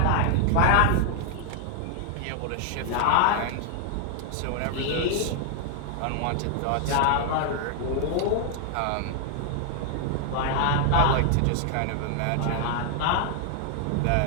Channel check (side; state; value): both; different; correlation 0.00